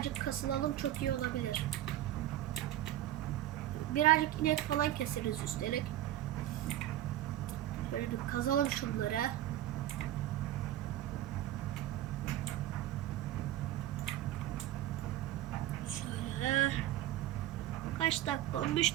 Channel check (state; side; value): quieter; left; 13.4 dB